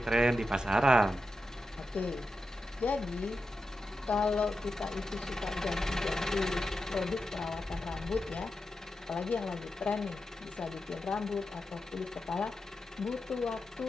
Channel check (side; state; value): both; normal; correlation 0.90